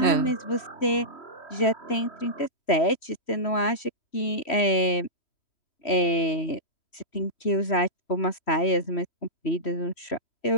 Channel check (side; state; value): right; late; 3.1 ms